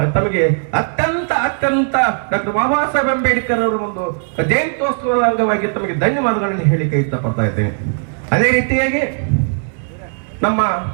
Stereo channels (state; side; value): silent; left; 64 dB below the other